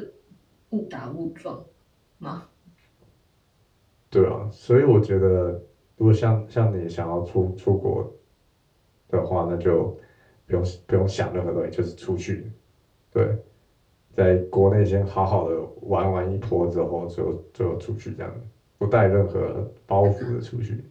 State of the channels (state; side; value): identical; both; correlation 1.00